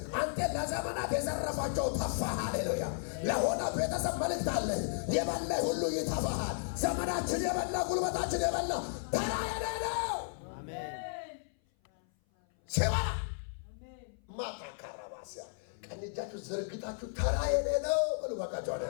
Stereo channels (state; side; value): silent; right; 55 dB below the other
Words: አንተ ለዘመናት የዘረፋቸው ተፋህ። ሃሌሉያ! ለሆነ ቤተሰብ መልእክት አለ። የበላ ሁሉ ይተፋሃል። ዘመናችን የበላ ጉልበታችን የበላ ተራ የሌለው ሲበላ ማታካራባሲያ ቀኝ እጃችሁ ዘርግታችሁ ተራ የሌለው በሉ ባካችሁ አለ።